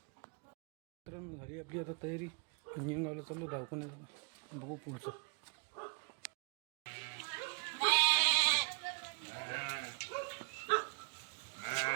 झाली आपली आता तयारी. नियंगावला चाललो दवाखान्यात, बघू पुढचं.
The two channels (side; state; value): left; quieter; 36.2 dB